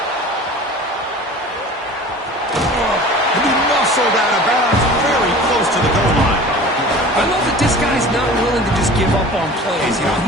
He muscled out of bounds, very close to the goal line. I love that this guy's not willing to just give up on plays. You know,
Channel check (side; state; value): both; normal; correlation 0.40